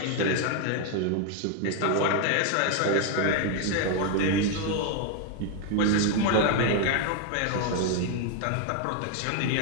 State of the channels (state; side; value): different; both; correlation 0.01